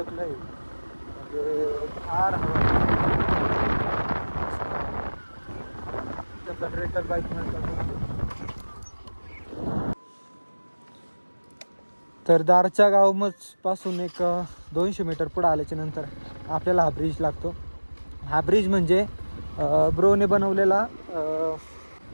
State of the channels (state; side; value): inverted; both; correlation -1.00